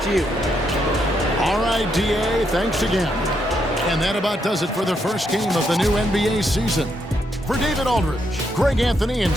to you. All right, DA, thanks again. And that about does it for the first game of the new NBA season. For David Aldridge, Greg Anthony, and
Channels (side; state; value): both; normal; correlation 0.78